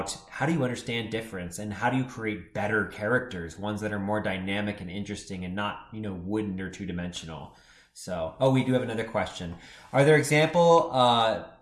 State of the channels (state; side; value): identical; both; correlation 1.00